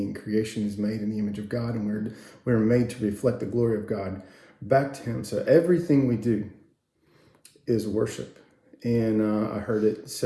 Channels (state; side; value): identical; both; correlation 1.00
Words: Creation is made in the image of God, and we're made to reflect the glory of God back to Him. So everything we do is worship. And I heard it